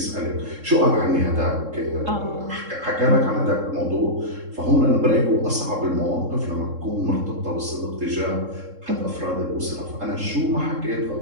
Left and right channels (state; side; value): late; left; 3.7 ms